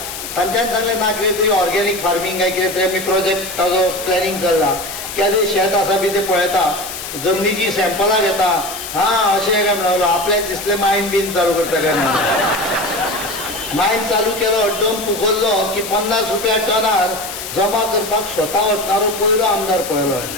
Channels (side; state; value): left; noise; hiss, 8 dB below the sound